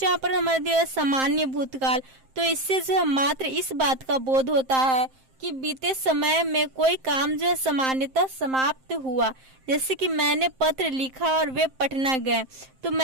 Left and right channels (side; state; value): left; late; 7.6 ms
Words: यहाँ पर हमारे दिया है सामान्य भूतकाल। तो इससे जो है मात्र इस बात का बोध होता है कि बीते समय में कोई काम जो है सामान्यतः समाप्त हुआ। जैसे कि मैंने पत्र लिखा और वे पटना गए। तो